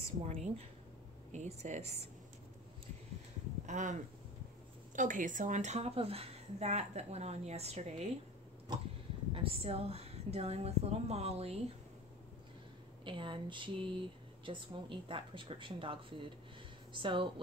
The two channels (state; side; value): normal; both; correlation 0.34